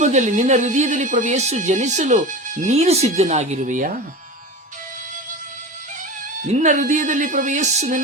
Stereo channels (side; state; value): both; normal; correlation 0.29